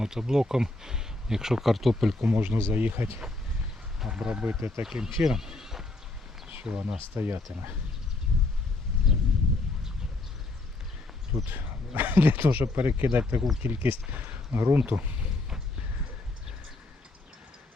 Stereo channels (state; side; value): quieter; right; 3.1 dB